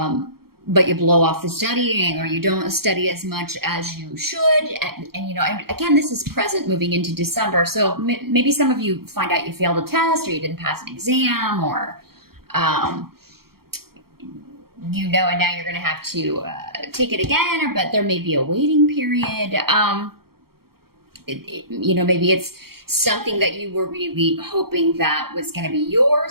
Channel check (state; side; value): late; left; 0.94 ms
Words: you blow off the studying, or you don't study as much as you should, and again, this is present moving into December. So maybe some of you find out you failed a test, or you didn't pass an exam, or and now you're going to have to take it again, but there may be a waiting period. Maybe it's something that you were really hoping that was going to be